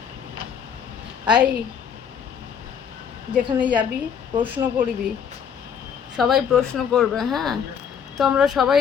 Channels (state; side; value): quieter; right; 7.6 dB